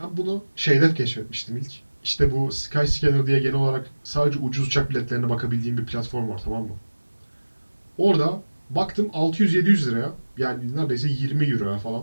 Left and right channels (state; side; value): inverted; both; correlation -1.00